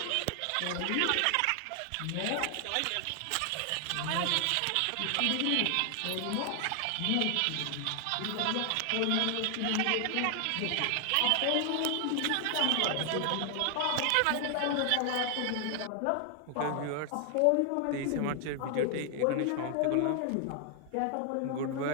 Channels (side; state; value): both; different; correlation 0.00